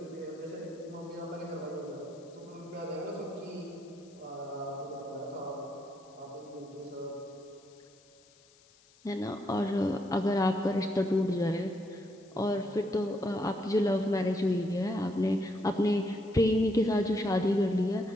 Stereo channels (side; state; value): left; noise; hiss, 29 dB below the sound